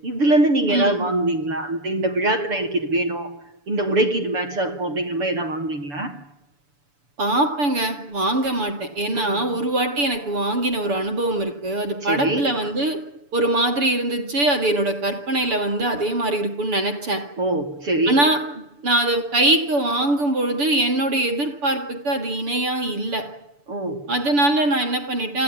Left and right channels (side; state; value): left; late; 6.9 ms